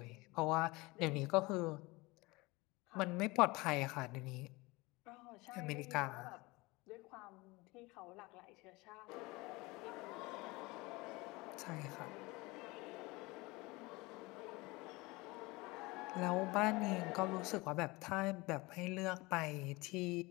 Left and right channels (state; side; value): quieter; right; 23.2 dB